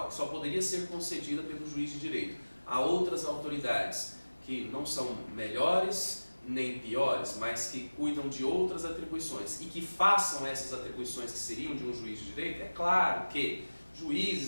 que só poderia ser concedida pelo juiz de direito a outras autoridades que não são melhores nem piores, mas que cuidam de outras atribuições e que façam essas atribuições que seriam de um juiz de direito, é claro que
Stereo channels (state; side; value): inverted; both; correlation -1.00